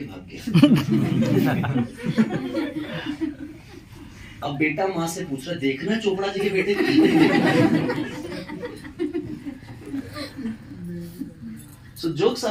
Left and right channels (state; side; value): identical; both; correlation 1.00